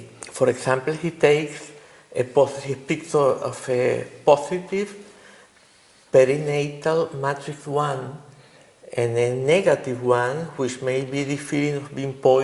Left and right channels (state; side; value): identical; both; correlation 1.00